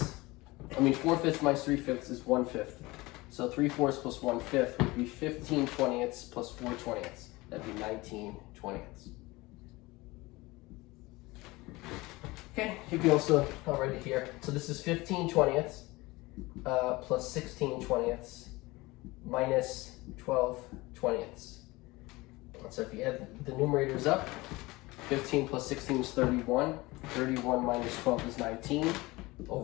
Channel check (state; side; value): quieter; right; 21.5 dB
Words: 4/5 minus 3/5 is 1/5. So 3/4 plus 1/5 would be 15/20 plus 4/20. That'd be 19/20. Okay, you can also, I'll write it here. So this is 15/20 plus 16/20 minus 12/20. So if you add the numerators up, 15 plus 16 is 31. 31 minus 12 is 19